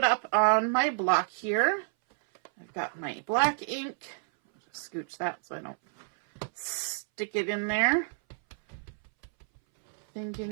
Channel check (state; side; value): silent; left; 58 dB below the other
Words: up on my block here. I've got my black ink. I'll just scooch that so I don't stick it in there.